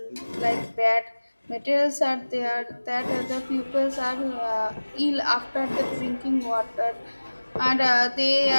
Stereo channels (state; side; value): inverted; both; correlation -1.00